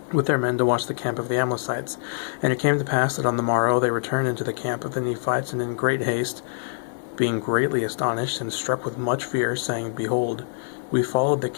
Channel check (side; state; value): right; silent; 62 dB below the other